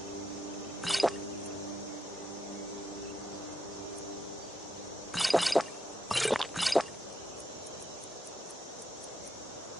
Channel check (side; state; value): both; normal; correlation 0.83